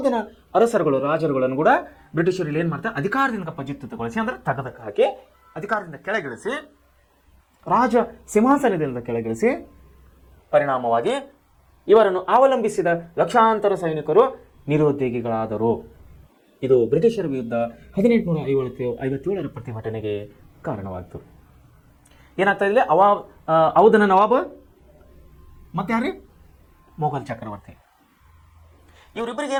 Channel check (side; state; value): both; identical; correlation 1.00